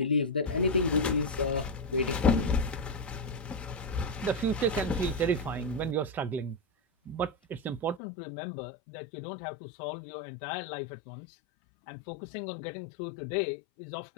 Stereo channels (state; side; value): drops out; right; at 8.0 s